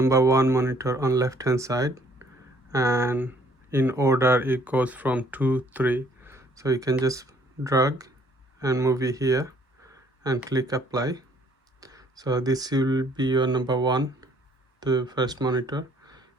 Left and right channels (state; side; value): normal; both; correlation 0.61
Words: 1 monitor on left hand side, and in order it goes from 2 3. So you can just drag and move it here and click apply. So this will be your number 1, the first monitor.